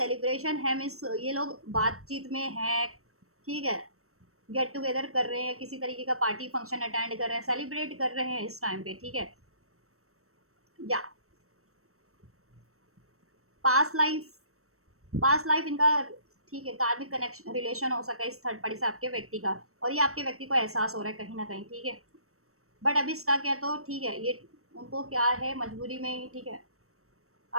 है, मीन्स ये लोग बातचीत में है, ठीक है, गेट टुगेदर कर रहे हैं, किसी तरीके का पार्टी फंक्शन अटेंड कर रहे हैं, सेलिब्रेट कर रहे हैं इस टाइम पे, ठीक है। या पास्ट लाइफ इनका, ठीक है, कार्मिक कनेक्शन रिलेशन हो सका इस थर्ड पार्टी से आपके व्यक्ति का, और ये आपके व्यक्ति को एहसास हो रहा है कहीं ना कहीं, ठीक है। बट अभी स्टक है तो ठीक है, ये उनको क्या है मजबूरी में ही, ठीक है।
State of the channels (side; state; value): left; late; 0.63 ms